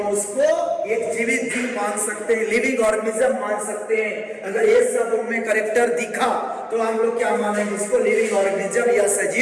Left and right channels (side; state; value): both; identical; correlation 1.00